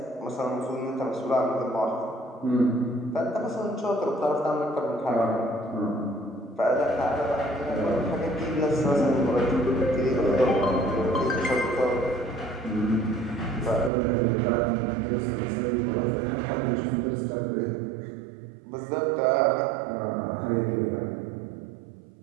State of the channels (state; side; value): drops out; left; at 13.9 s